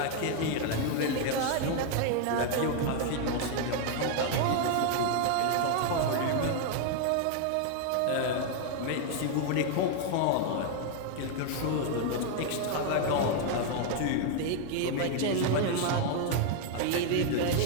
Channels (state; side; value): different; both; correlation 0.00